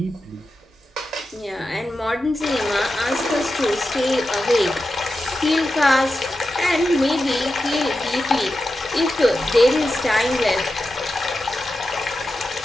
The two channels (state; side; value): normal; both; correlation 0.90